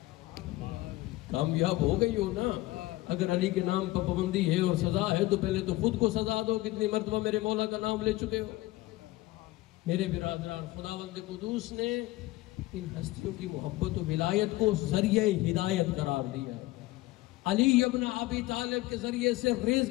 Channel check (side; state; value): right; quieter; 18.5 dB